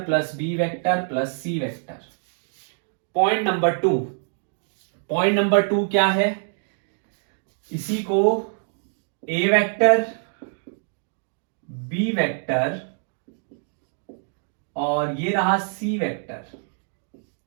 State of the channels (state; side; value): silent; left; 62 dB below the other